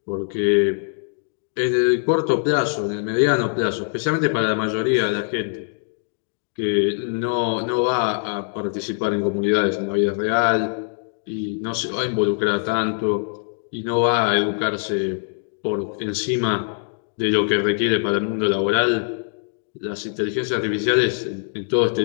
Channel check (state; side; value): silent; right; digital silence